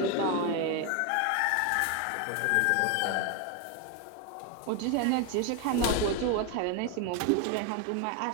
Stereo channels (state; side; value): different; both; correlation 0.01